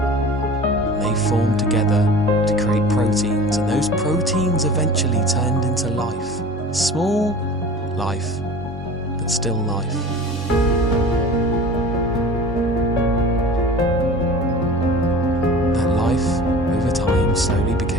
And they formed together to create proteins, and those proteins eventually turned into life. Small life, but still life.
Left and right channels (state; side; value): normal; both; correlation 0.39